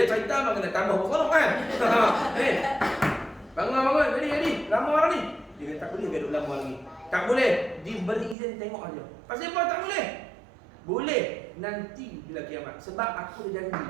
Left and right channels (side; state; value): left; drops out; at 8.3 s